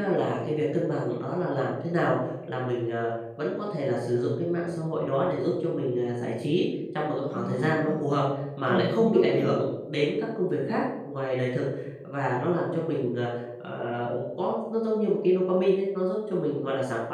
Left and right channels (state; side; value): identical; both; correlation 1.00